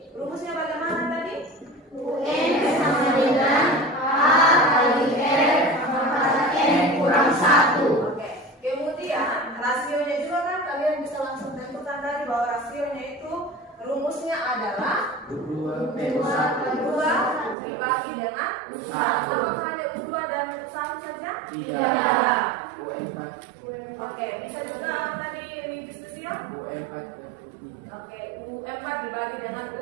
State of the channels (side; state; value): left; drops out; at 17.6 s